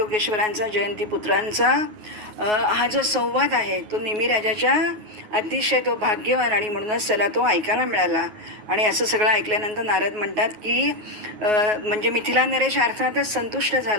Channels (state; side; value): late; left; 9.4 ms